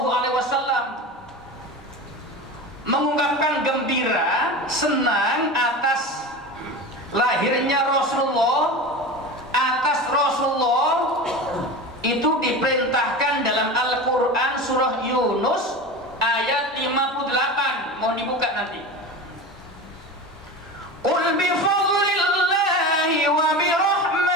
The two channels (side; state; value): both; normal; correlation 0.29